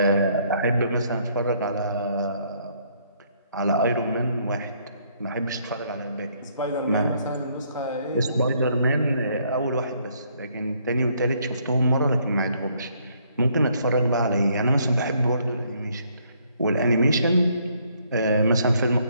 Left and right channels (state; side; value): inverted; both; correlation -0.68